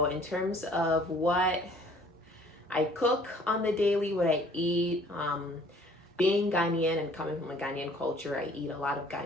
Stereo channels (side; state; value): both; normal; correlation 0.55